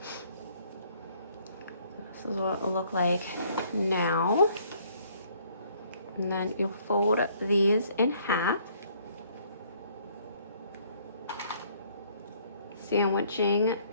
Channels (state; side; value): inverted; both; correlation -0.63